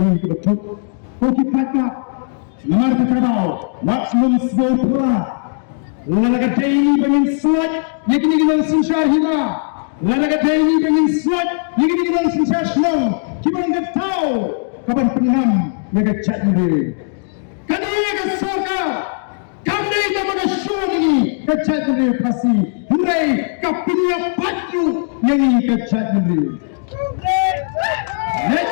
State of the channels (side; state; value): right; silent; digital silence